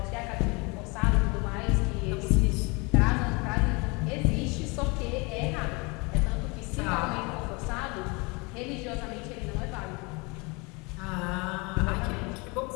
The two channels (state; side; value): quieter; right; 28.1 dB